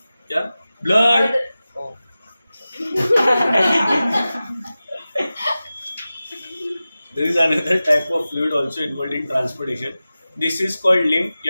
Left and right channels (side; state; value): both; inverted; correlation -0.95